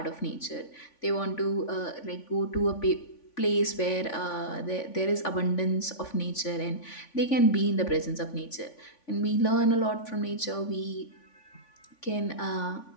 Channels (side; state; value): right; late; 3.5 ms